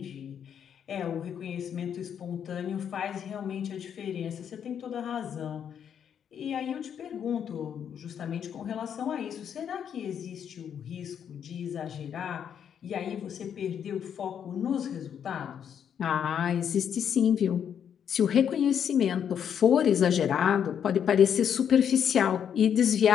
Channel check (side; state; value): right; quieter; 8.4 dB